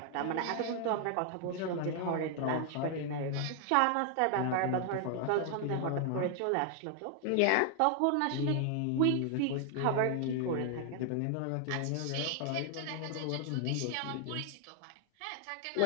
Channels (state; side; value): different; both; correlation 0.00